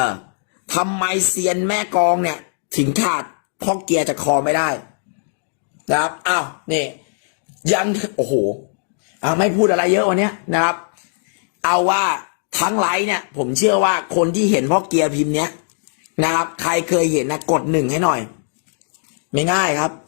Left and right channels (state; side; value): silent; right; digital silence